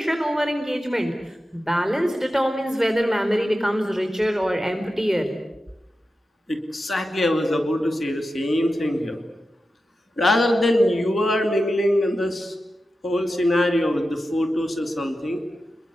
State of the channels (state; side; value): normal; both; correlation 0.92